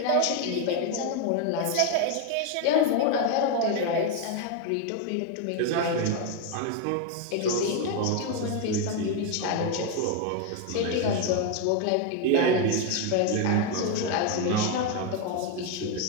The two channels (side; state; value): both; different; correlation 0.02